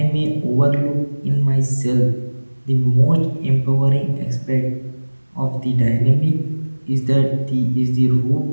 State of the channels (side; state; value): both; inverted; correlation -1.00